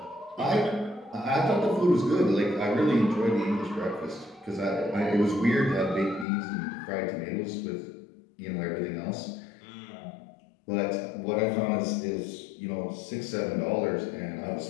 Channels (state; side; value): drops out; right; at 6.2 s